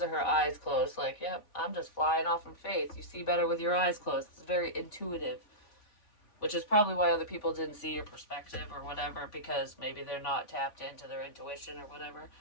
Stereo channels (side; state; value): right; late; 3.5 ms